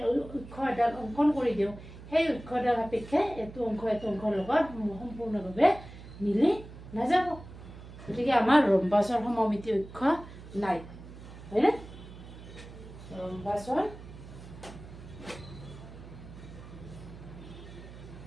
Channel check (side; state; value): right; noise; hum, 15 dB below the sound